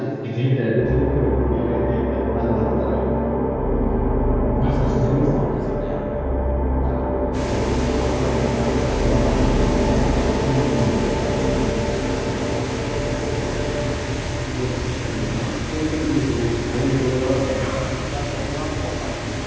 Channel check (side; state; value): both; identical; correlation 1.00